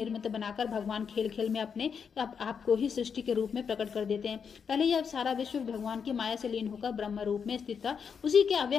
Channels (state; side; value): quieter; right; 6.6 dB